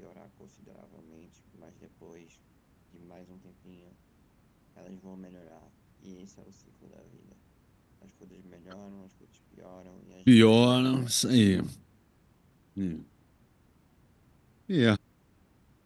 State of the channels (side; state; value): both; identical; correlation 1.00